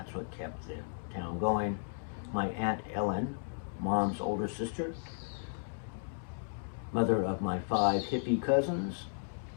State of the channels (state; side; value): silent; right; digital silence